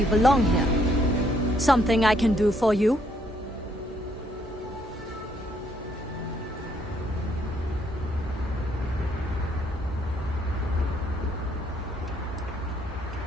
belong here. Something I can do for you?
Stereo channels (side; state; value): both; normal; correlation 0.69